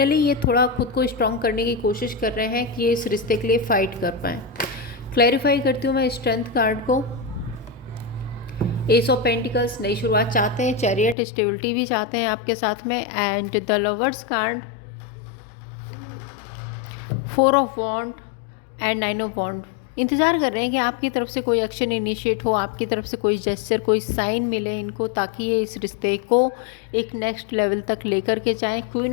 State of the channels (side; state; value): right; drops out; at 11.2 s